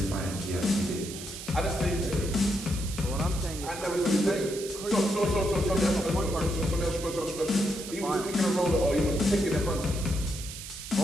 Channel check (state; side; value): noise; right; hiss, 10 dB below the sound